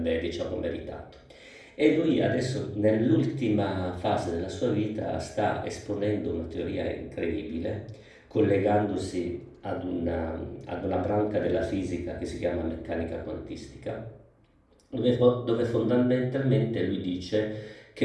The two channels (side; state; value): both; identical; correlation 1.00